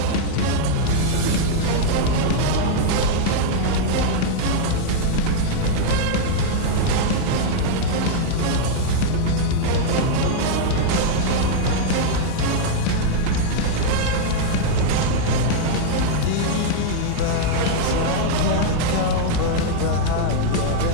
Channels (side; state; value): both; different; correlation 0.00